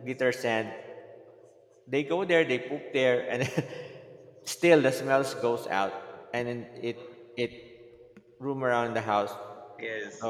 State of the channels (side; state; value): both; identical; correlation 1.00